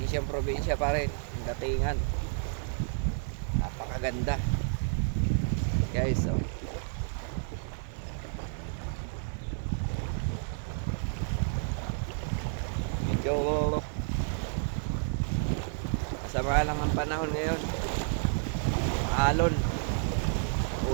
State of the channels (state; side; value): silent; left; digital silence